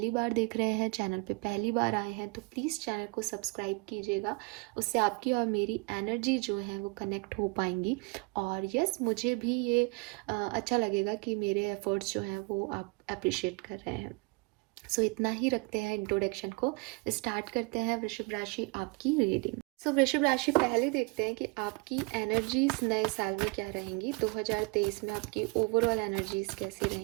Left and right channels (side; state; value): left; quieter; 29.3 dB